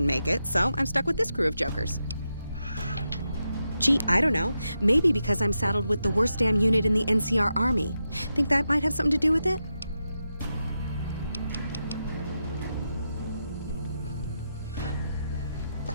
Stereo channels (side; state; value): both; inverted; correlation -0.87